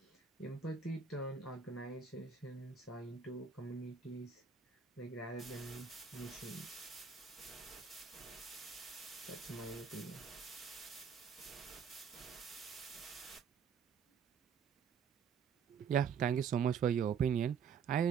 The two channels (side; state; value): left; quieter; 6.7 dB